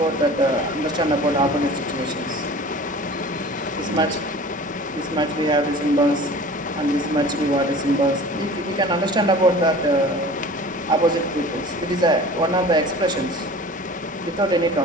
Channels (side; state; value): both; normal; correlation 0.41